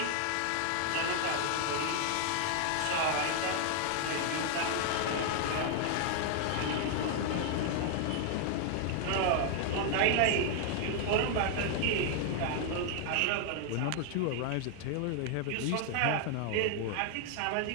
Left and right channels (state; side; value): different; both; correlation 0.00